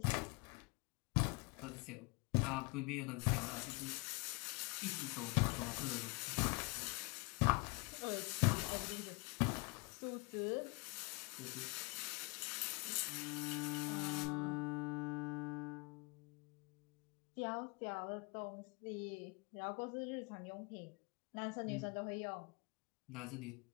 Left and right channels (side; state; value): right; quieter; 28.7 dB